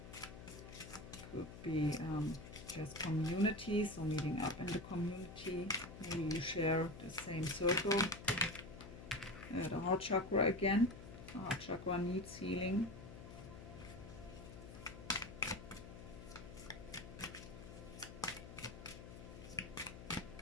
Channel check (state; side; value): noise; left; hum, 13 dB below the sound